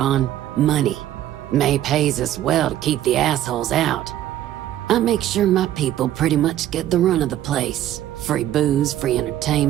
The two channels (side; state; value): left; quieter; 12.6 dB